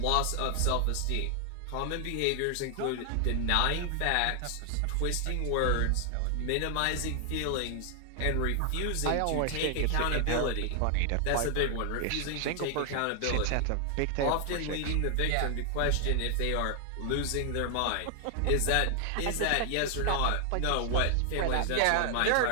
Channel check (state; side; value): different; both; correlation 0.00